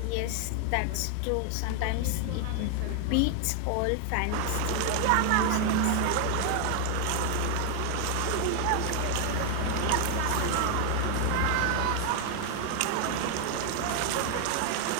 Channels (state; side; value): different; both; correlation 0.00